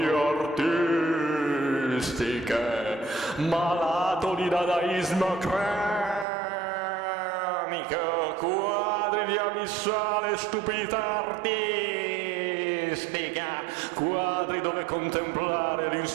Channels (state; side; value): drops out; left; at 6.2 s